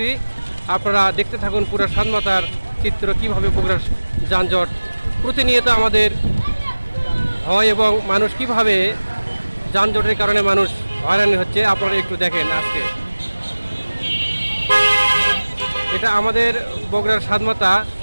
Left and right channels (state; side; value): inverted; both; correlation -1.00